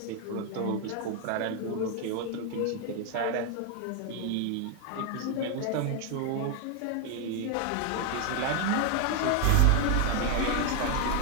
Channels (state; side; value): different; both; correlation 0.01